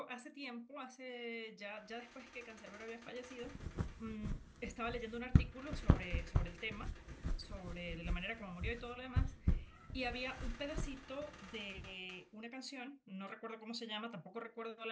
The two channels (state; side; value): identical; both; correlation 1.00